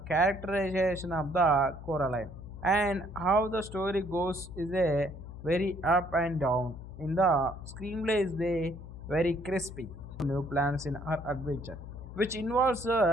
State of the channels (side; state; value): left; noise; hum, 13 dB below the sound